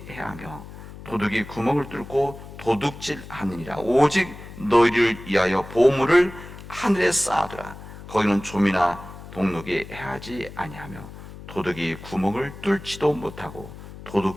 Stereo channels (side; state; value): left; noise; hum, 15 dB below the sound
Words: 해하며 도둑이 구멍을 뚫고 도둑질하느니라. 오직 너희를 위하여 보물을 하늘에 쌓아두라. 거기는 좀이나 동록이 해하지 아니하며 도둑이 구멍을 뚫지도 못하고